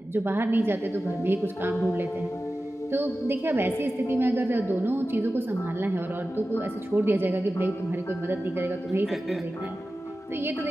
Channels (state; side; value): normal; both; correlation 0.94